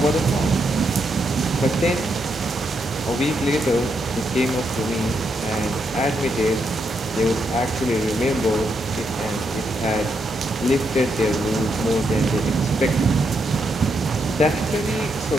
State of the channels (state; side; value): normal; both; correlation 0.80